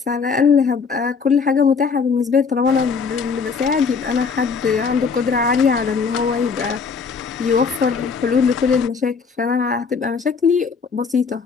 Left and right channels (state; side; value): quieter; right; 5.4 dB